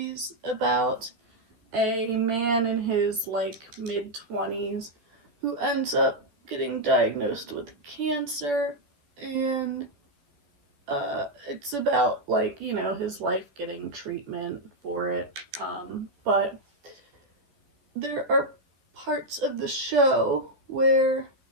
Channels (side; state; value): left; late; 13 ms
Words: about a man in his like mid-20s who ends up getting diagnosed with cancer, and it's about like, you know, his life getting treatment for it, but there are parts of the show where